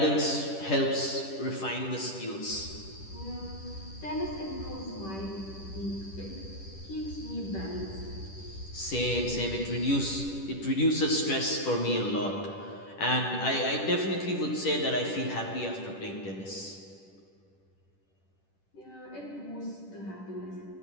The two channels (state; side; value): late; right; 10 ms